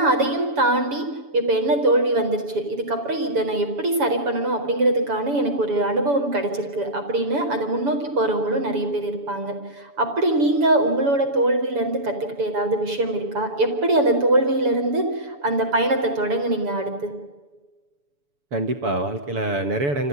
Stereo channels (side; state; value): left; late; 7.0 ms